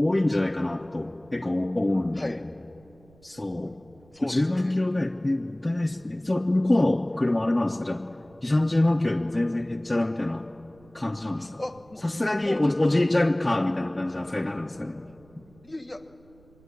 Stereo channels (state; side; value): noise; right; rumble, 28 dB below the sound